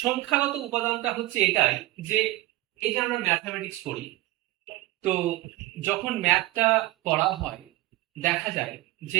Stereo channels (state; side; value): quieter; left; 18.1 dB